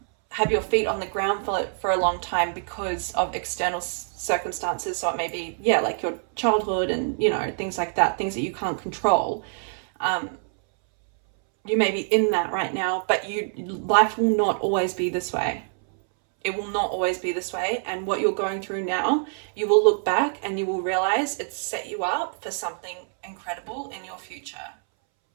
have your feet on the ground for a long time because of external circumstances. So it may be, yeah, like your childhood and, you know, things like that, things that you can't control. You may be in that right now, but life will not always be this way. It will not always be this way. And what you're going through now, you will look back and you will realize it's set you up for something incredible in your future.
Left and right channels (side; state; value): left; silent; 61 dB below the other